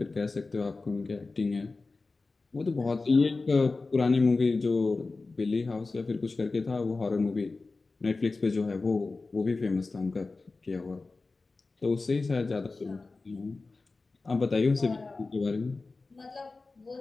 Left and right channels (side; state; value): right; quieter; 3.7 dB